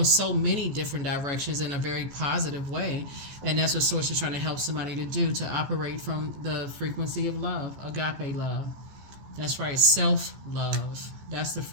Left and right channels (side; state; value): left; late; 14 ms